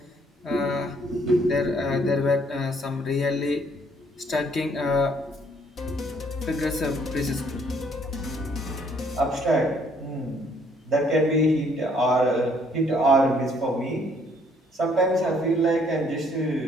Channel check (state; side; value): normal; both; correlation 0.64